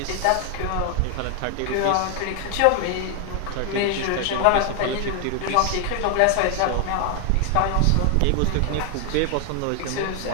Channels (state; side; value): different; both; correlation 0.00